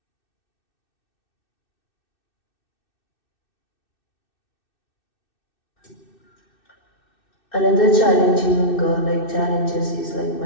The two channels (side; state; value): right; late; 2.6 ms